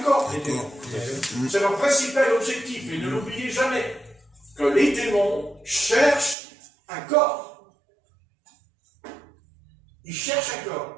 corps, les démons. C'est leur principal objectif. Et ne l'oubliez jamais, que les démons cherchent un corps. Ils cherchent un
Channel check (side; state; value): left; drops out; at 6.4 s